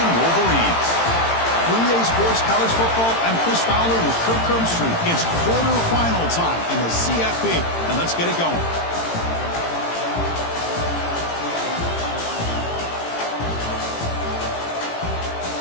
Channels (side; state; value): right; late; 18 ms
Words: Wolverines. For EA Sports College Football, I'm Chris Fowler with Kirk Crumbstreet. It's quarterfinal time in the CFP, and let's get it going.